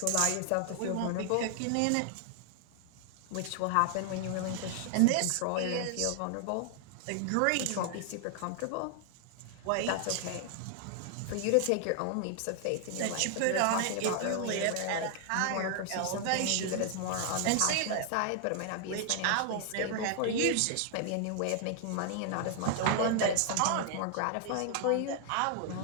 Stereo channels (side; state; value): both; different; correlation 0.00